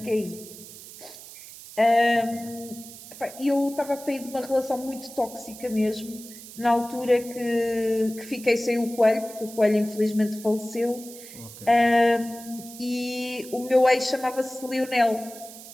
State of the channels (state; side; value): noise; right; hiss, 16 dB below the sound